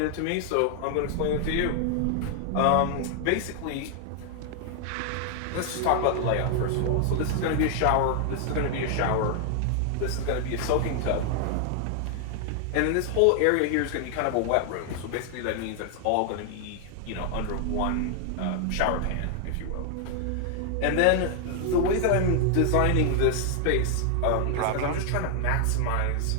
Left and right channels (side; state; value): both; different; correlation 0.00